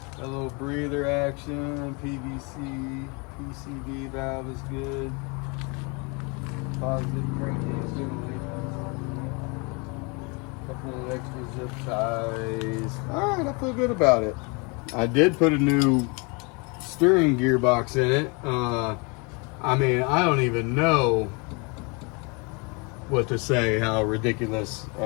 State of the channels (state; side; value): quieter; right; 31.0 dB